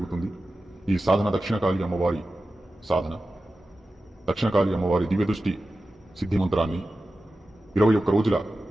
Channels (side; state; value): both; normal; correlation 0.94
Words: ఈ సాధన దక్షిణకాళి అమ్మవారి సాధన. దక్షిణకాళి అమ్మవారి దివ్యదృష్టి సిద్ధి మంత్రాన్ని 21 రోజుల